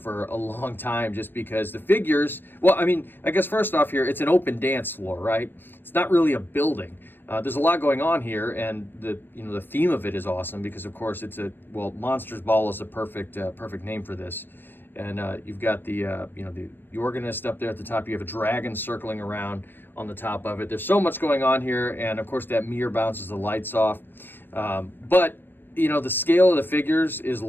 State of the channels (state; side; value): late; right; 0.096 ms